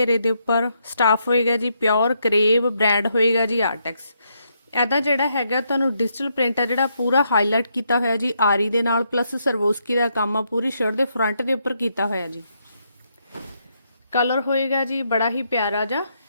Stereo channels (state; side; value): inverted; both; correlation -0.77